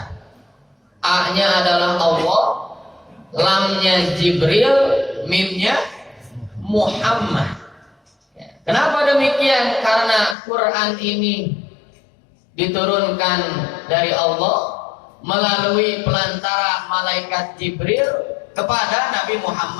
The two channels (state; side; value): drops out; right; at 10.4 s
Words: A-nya adalah Allah, lamnya Jibril, mimnya Muhammad. Kenapa demikian? Karena Quran ini diturunkan dari Allah melalui pelantara malaikat Jibril kepada Nabi